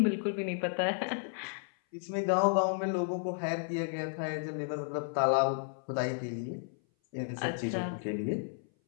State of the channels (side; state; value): right; silent; 56 dB below the other